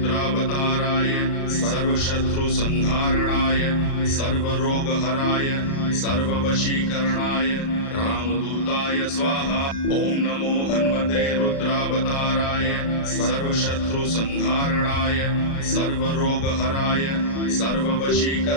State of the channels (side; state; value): right; late; 36 ms